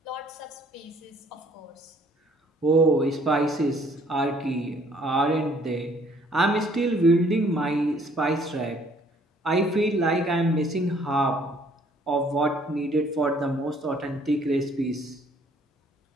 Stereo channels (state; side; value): normal; both; correlation 0.61